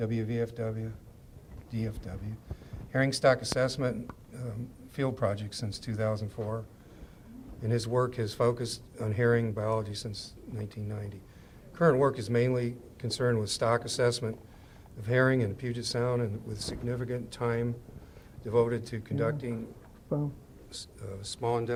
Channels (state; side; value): identical; both; correlation 1.00